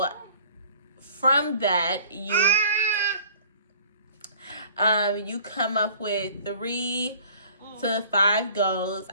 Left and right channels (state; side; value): inverted; both; correlation -0.50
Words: from that, you come up with 3 to 5 goals.